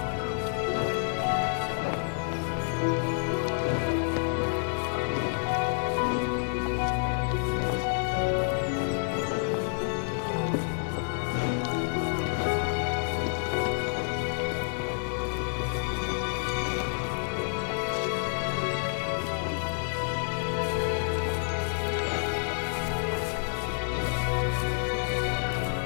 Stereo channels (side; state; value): right; silent; digital silence